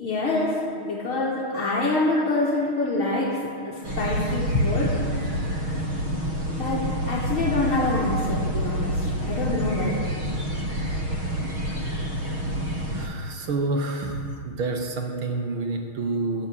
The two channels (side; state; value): left; late; 6.4 ms